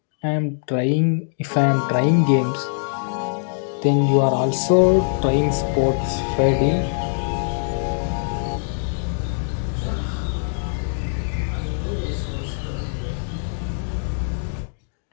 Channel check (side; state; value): right; silent; digital silence